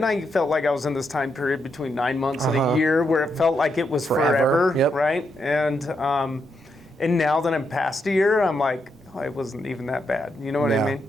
I felt like I was in this time period between 9 months and a year where it felt like it was forever. Right? And now that I'm past a year, I'm like, oh, it wasn't even that bad. You know what I mean?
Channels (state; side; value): normal; both; correlation 0.81